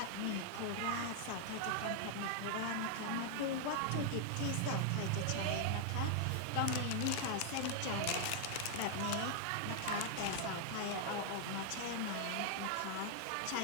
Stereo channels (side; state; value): both; different; correlation 0.00